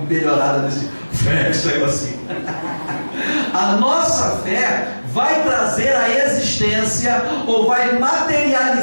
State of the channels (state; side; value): inverted; both; correlation -1.00